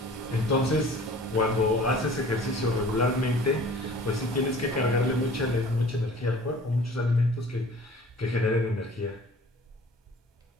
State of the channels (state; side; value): normal; both; correlation 0.47